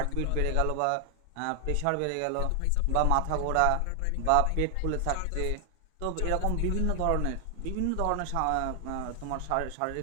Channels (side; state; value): both; different; correlation 0.00